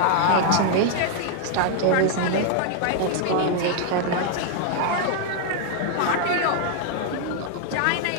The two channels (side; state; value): both; different; correlation 0.00